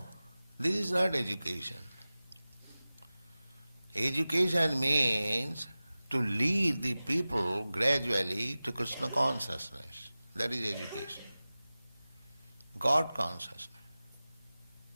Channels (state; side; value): inverted; both; correlation -0.97